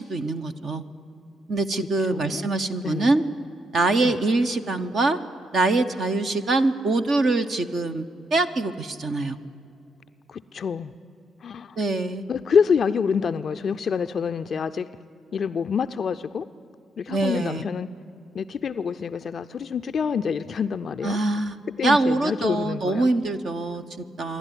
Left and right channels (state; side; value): normal; both; correlation 0.77